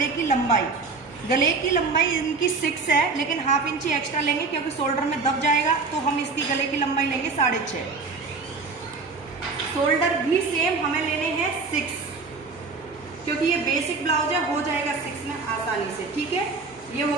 की लंबाई। गले की लंबाई इनकी 6 है, लेकिन ½ इंची एक्स्ट्रा लेंगे क्योंकि शोल्डर में दब जाएगा, तो हम इसकी गले की लंबाई लेंगे 6.5। शोल्डर भी सेम हमें लेने हैं 6, क्योंकि ये बेसिक ब्लाउज है, हो जाएगा 6 में आसानी से, ठीक है। ये हो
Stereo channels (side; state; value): left; quieter; 4.2 dB